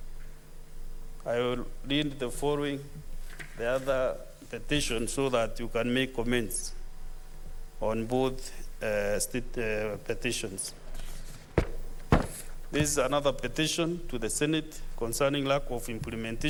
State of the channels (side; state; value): both; identical; correlation 1.00